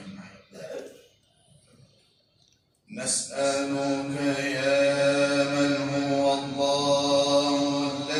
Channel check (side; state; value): both; identical; correlation 1.00